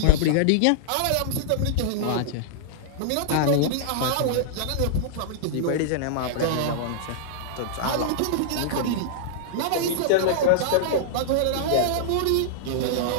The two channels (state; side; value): different; both; correlation -0.01